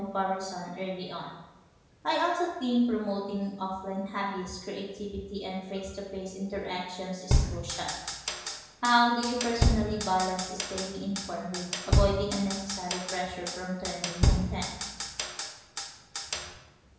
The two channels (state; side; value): identical; both; correlation 1.00